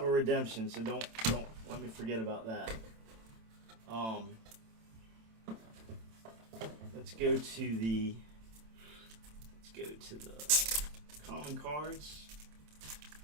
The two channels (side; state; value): left; late; 27 ms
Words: a redemption, so don't let me forget about that. Let's go to the common cards.